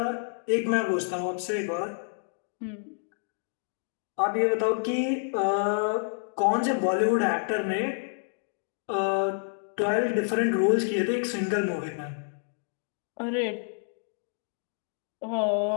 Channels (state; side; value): silent; right; digital silence